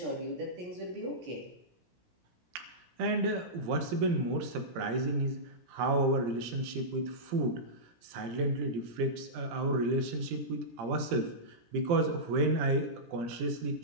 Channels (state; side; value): late; left; 17 ms